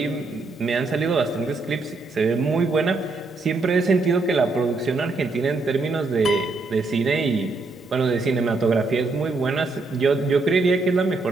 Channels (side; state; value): left; quieter; 3.5 dB